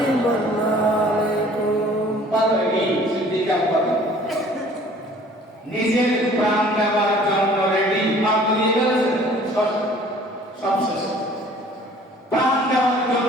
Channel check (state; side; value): normal; both; correlation 0.52